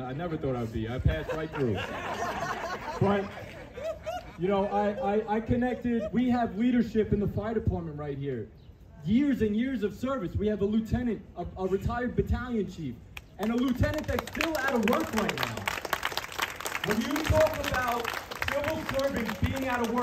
I never thought I would be. I passed right through. But, you know, I connected. We have leadership in the fire department right here. Years and years of service. We have a lieutenant, a retired battalion chief, and a lieutenant that's still out of work right now. When you talk about civil servants being out of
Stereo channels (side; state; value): both; identical; correlation 1.00